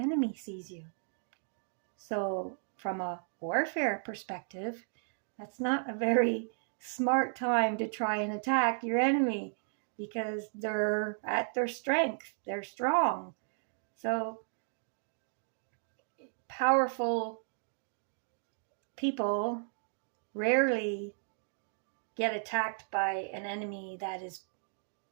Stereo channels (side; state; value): left; silent; digital silence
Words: sees you. So from a warfare perspective, that's not a very smart time to try and attack your enemy, because they're at their strength, they're strong. So powerful people rarely get attacked by an enemy that is